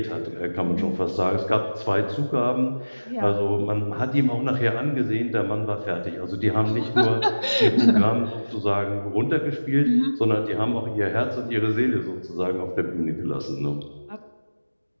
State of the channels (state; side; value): inverted; both; correlation -1.00